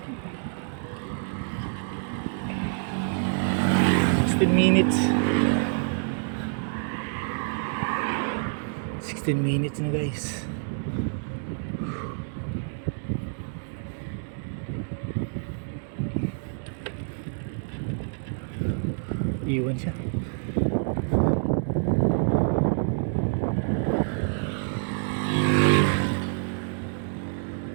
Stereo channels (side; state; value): left; silent; 60 dB below the other